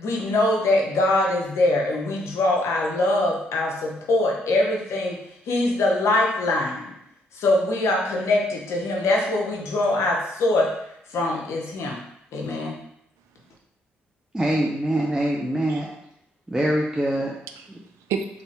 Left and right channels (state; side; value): normal; both; correlation 0.72